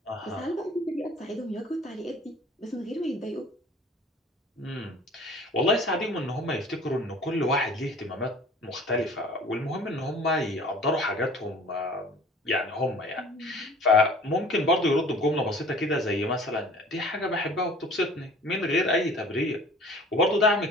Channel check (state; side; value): normal; both; correlation 0.47